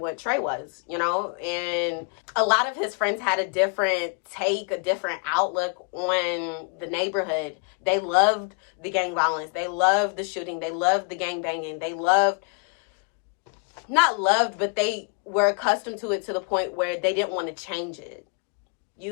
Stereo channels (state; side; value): quieter; right; 36.6 dB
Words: Trey was, you know? And a lot of his friends had a different take, a different outlook on the neighborhood. They loved the gang violence. They loved the shooting. They loved the gang banging. They loved, not loved, but they were accustomed to it to the point where they didn't want to change it. You